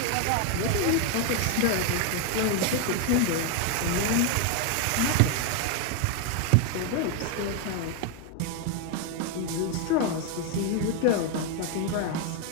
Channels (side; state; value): both; different; correlation 0.01